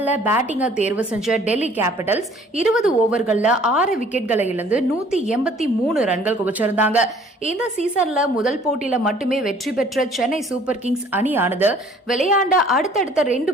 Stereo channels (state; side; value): normal; both; correlation 0.55